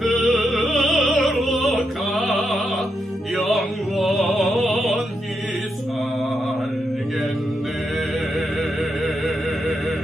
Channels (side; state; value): both; normal; correlation 0.83